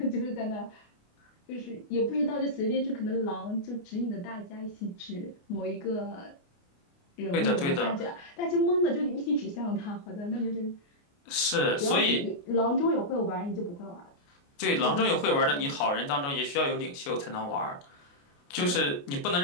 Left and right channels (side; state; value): right; late; 29 ms